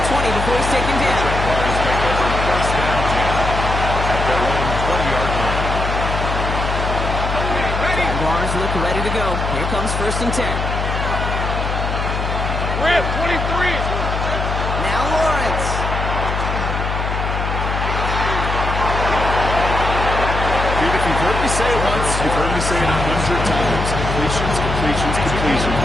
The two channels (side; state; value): left; noise; hum, 2 dB below the sound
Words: 20 before he's taken down. Jaguars take over first down 10 at their own 20-yard line. Jaguars look ready to go. Here comes first and 10. Rip, 23. Now Lawrence. Dude, if you've heard me say it once, you've heard me say it 100 times. Completions, completions, completions.